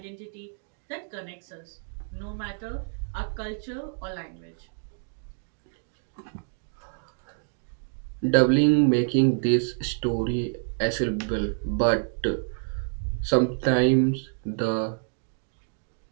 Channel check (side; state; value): left; silent; digital silence